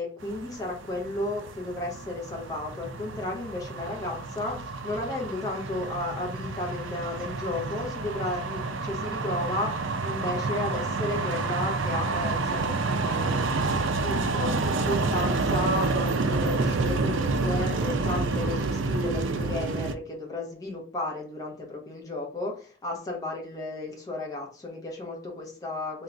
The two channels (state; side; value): normal; both; correlation 0.32